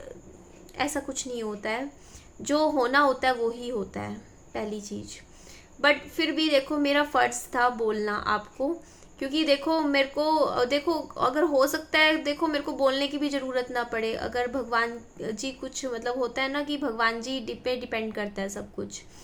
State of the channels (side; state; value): both; identical; correlation 1.00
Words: ऐसा कुछ नहीं होता है। जो होना होता है वो ही होता है, पहली चीज़। बट फिर भी देखो, मेरा फ़र्ज़ था बोलना आपको, क्योंकि देखो मेरे को, देखो अगर हो सकता है, देखो मेरे को बोलने की भी ज़रूरत ना पड़े, अगर भगवान जी कुछ मतलब होता है ना कि भगवान जी पे डिपेंड करता है सब कुछ।